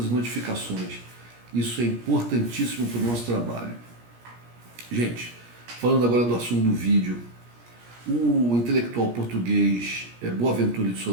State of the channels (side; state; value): left; late; 17 ms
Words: as notificações. Isso é importantíssimo para o nosso trabalho. Gente, falando agora do assunto do vídeo, o intelectual português Boaventura de